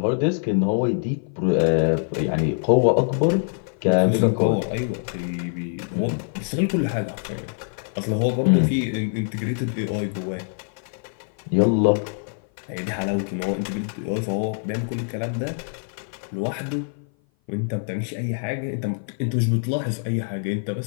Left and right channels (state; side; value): silent; right; 57 dB below the other